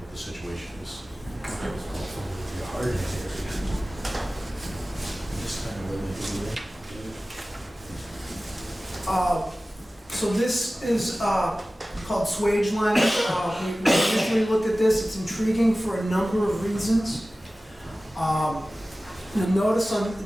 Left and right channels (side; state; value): both; normal; correlation 0.97